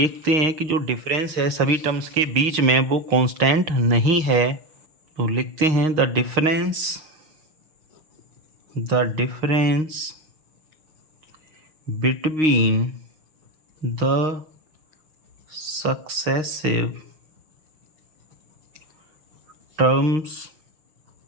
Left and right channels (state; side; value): late; left; 6.4 ms